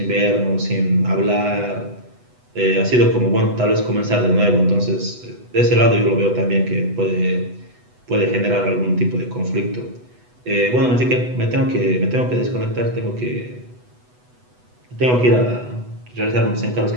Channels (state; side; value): late; left; 8.1 ms